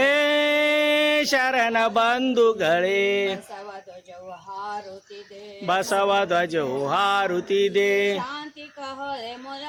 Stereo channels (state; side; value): identical; both; correlation 1.00